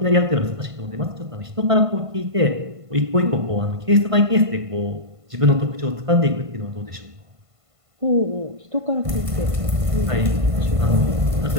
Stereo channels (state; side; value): late; left; 1.5 ms